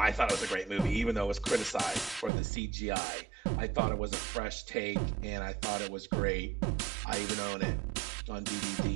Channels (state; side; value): drops out; left; at 2.3 s